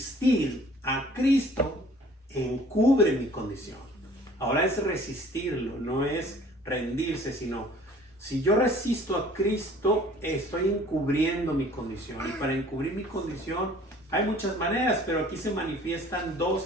a Cristo encubre mi condición. Ahora es resistirlo, no es rendirse, sino si yo resisto a Cristo, estoy encubriendo mi condición. Y para encubrir mi condición hay muchas maneras, pero aquí se manifiestan dos,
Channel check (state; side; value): normal; both; correlation 0.52